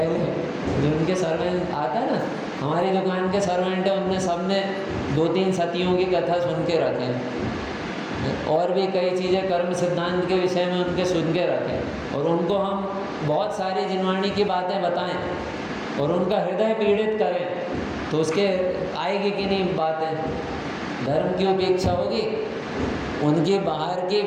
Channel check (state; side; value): identical; both; correlation 1.00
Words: जो उनके सर्वेंट आता है ना, हमारी दुकान के सर्वेंट है, उनने सबने 2-3 सतियों की कथा सुन के रखे हैं, और भी कई चीज़ें कर्म सिद्धांत के विषय में उनके सुन के रखें, और उनको हम बहुत सारी जिनवाणी की बातें बताएं और उनका हृदय पीड़ित करें, तो उसके आएगी कि नहीं बातें? धर्म की उपेक्षा होगी? उनकी बाहर की